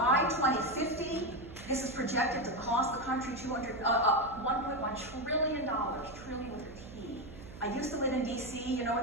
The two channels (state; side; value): noise; right; hum, 16 dB below the sound